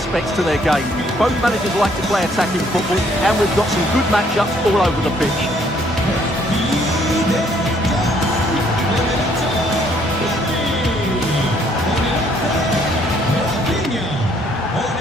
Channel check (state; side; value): normal; both; correlation 0.65